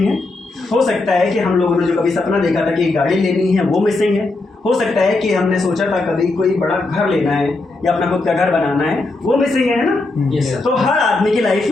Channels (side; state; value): right; quieter; 3.2 dB